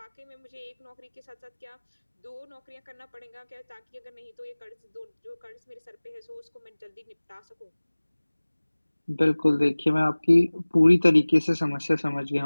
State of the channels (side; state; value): both; inverted; correlation -1.00